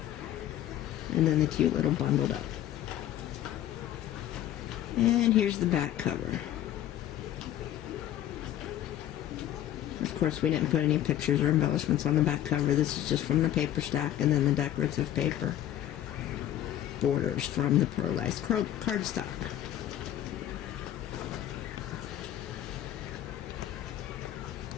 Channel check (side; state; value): right; quieter; 12.1 dB